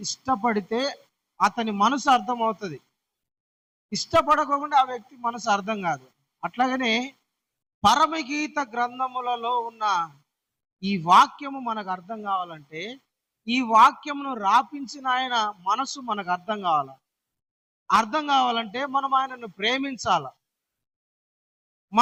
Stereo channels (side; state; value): both; identical; correlation 1.00